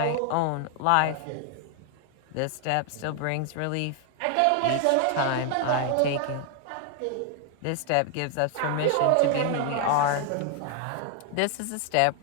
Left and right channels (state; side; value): different; both; correlation 0.00